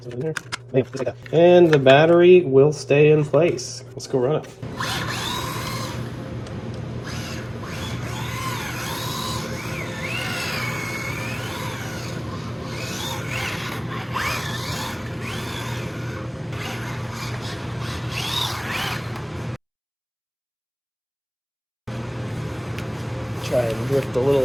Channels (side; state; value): both; identical; correlation 1.00